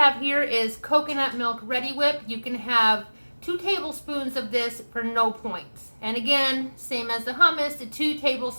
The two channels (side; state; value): both; inverted; correlation -1.00